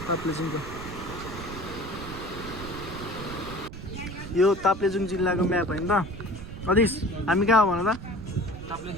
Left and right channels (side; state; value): right; noise; rumble, 11 dB below the sound